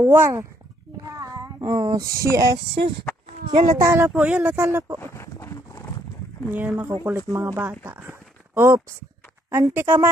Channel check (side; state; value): both; normal; correlation 0.69